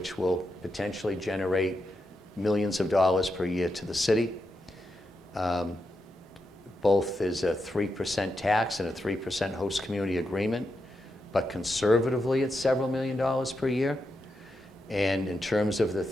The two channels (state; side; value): normal; both; correlation 0.85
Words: will potentially generate millions of dollars per year to the city. Both is a 3% tax and a 3% host community agreement, but conservatively it's several million dollars per year. And in terms of the